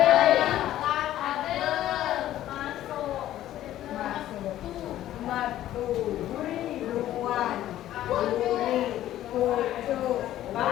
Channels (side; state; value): right; quieter; 13.2 dB